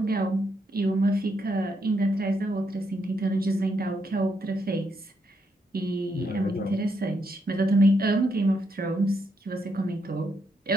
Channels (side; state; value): both; normal; correlation 0.78